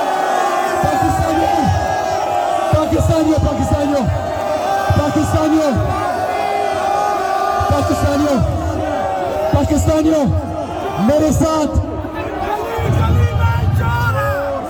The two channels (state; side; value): identical; both; correlation 1.00